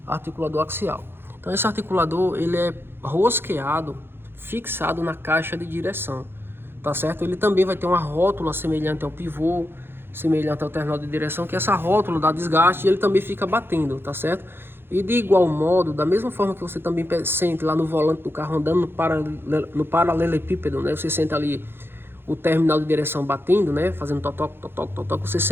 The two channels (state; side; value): late; left; 0.11 ms